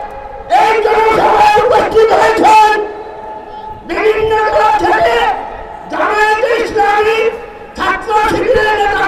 এই জনসভায় উপস্থিত হয়েছেন বিভিন্ন দল থেকে জামায়াত ইসলামী ছাত্র শিবিরের নেতা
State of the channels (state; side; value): identical; both; correlation 1.00